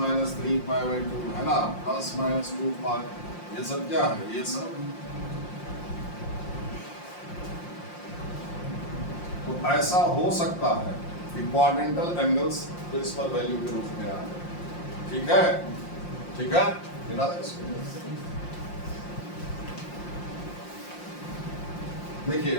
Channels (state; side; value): late; right; 5.7 ms